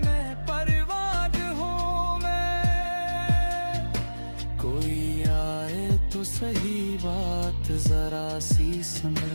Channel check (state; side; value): inverted; both; correlation -1.00